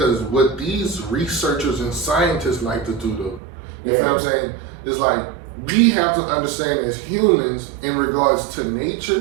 what these researchers and scientists like to do though, you feel what I'm saying? It's like, we have to understand as humans in regards to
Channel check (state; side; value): drops out; left; at 3.4 s